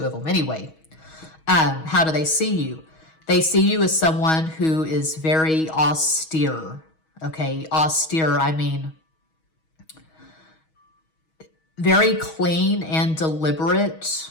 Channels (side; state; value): right; late; 6.3 ms